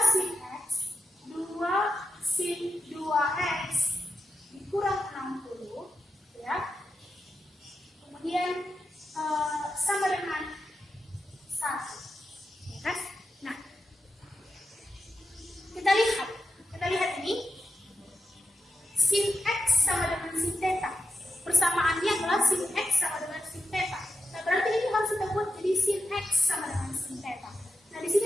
sin x, 2 sin 2x dikurang 60 ya. Kemudian sama dengan 1, ya kan? Nah, kita lihat ini sin x sama dengan sin theta. Persamaannya adalah sin x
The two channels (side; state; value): both; normal; correlation 0.90